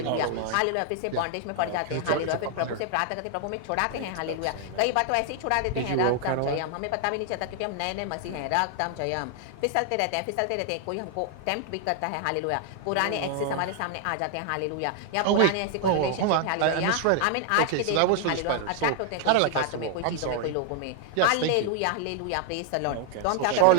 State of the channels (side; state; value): both; different; correlation 0.00